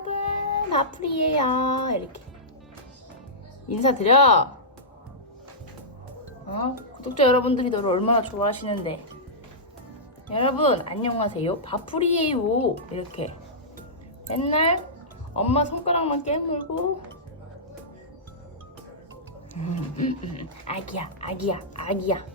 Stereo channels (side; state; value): both; normal; correlation -0.15